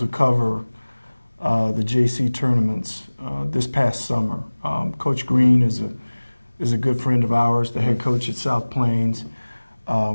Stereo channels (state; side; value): inverted; both; correlation -1.00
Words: cover the JC tournaments this past summer. Coach Green is a good friend of ours, the head coach at South Plains.